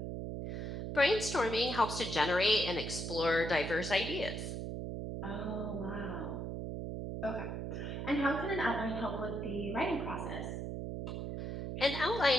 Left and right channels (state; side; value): noise; right; hum, 4 dB below the sound